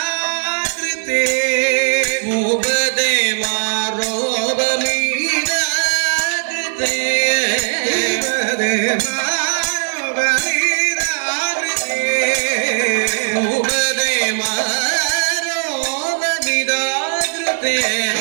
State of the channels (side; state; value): left; silent; 57 dB below the other